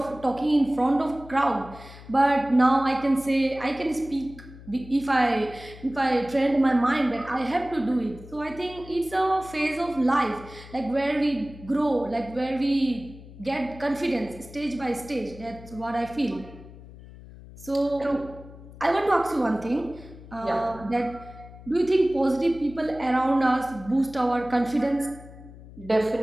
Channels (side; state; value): left; noise; hum, 18 dB below the sound